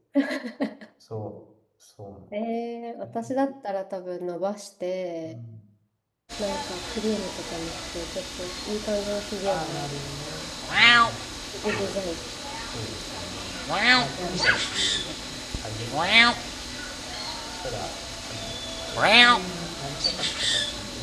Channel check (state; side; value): identical; both; correlation 1.00